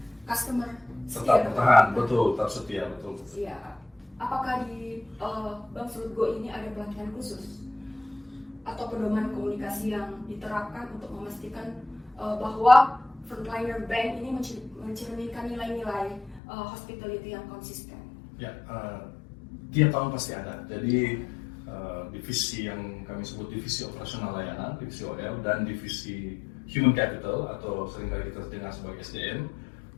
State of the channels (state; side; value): drops out; right; at 16.4 s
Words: customer tetap bertahan, betul, tetap setia, betul. Iya. Apakah di Bank Sulut Go ini ada pelatihan khusus atau pedoman komunikasi yang diterapkan untuk memastikan bahwa frontliner bank ini mencerminkan nilai-nilai hospitality yang konsisten? Ya, tiap tahun pasti ada. Jadi divisi yang kami sebut divisi operasional layanan, divisi OL, dan divisi human capital atau seringkali kita dengar sebagai SDM,